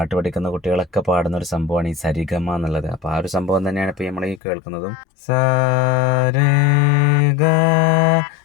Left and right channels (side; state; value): right; drops out; at 4.4 s